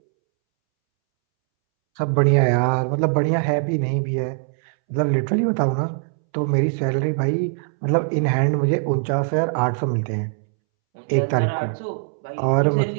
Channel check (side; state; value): left; silent; 65 dB below the other